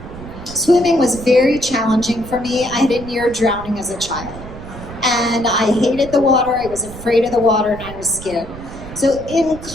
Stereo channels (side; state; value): right; noise; rumble, 14 dB below the sound